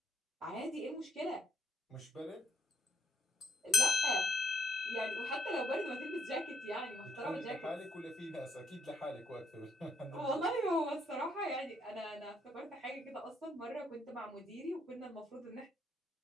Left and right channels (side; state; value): both; normal; correlation 0.72